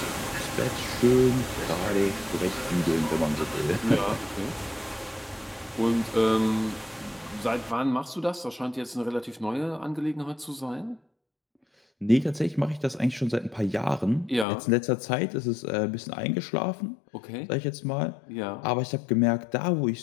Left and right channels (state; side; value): drops out; right; at 14.5 s